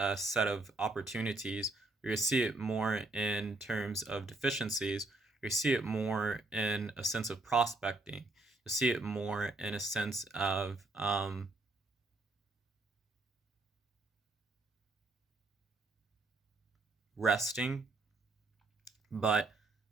set of opportunities, or you'll see it more in terms of deficiencies, or you see it more in a sense of prospecting. You'll see it more in a sense of resting, but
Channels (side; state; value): left; quieter; 3.1 dB